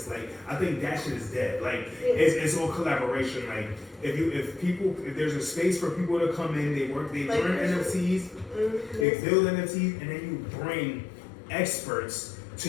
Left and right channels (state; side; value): drops out; right; at 9.1 s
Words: Like I think that shit is dead. Like it's all collaboration. Like if there's a space for people to come in, they learn NFTs, they build NFTs, and then you bring experts